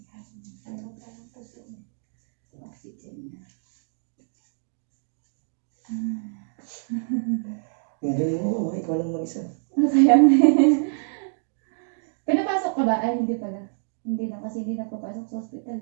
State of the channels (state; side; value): silent; left; digital silence